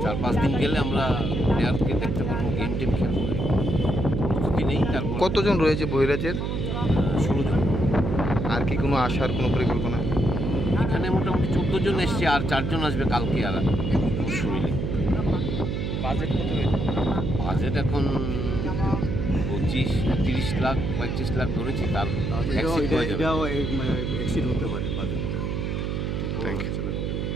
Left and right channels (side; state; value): right; noise; hum, 1 dB below the sound